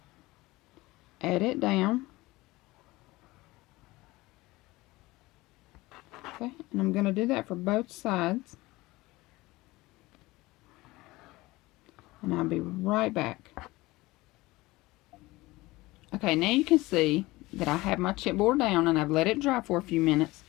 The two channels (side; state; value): right; quieter; 20.3 dB